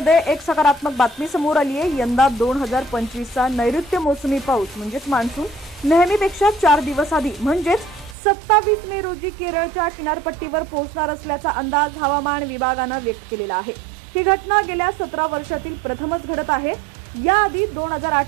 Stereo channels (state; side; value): drops out; left; at 8.2 s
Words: एक सकारात्मक बातमी समोर आली आहे। यंदा 2025चा नैऋत्य मोसमी पाऊस म्हणजेच मान्सून नेहमीपेक्षा 4 दिवस आधी म्हणजेच 27 मे रोजी केरळच्या किनारपट्टीवर पोहोचणार असल्याचा अंदाज हवामान विभागाने व्यक्त केलेला आहे। ही घटना गेल्या 17 वर्षातील प्रथमच घडत आहे। याआधी